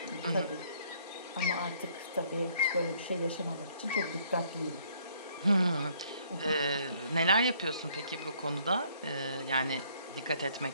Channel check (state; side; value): inverted; both; correlation -0.64